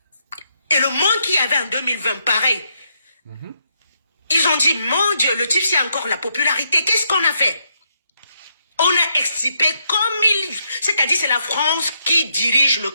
et le monde qu'il y avait en 2020, pareil. Ils ont dit, mon Dieu, le type, c'est encore la popularité. Qu'est-ce qu'on a fait? On a extirpé c'est-à-dire c'est la France qui dirige le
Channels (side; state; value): both; inverted; correlation -0.77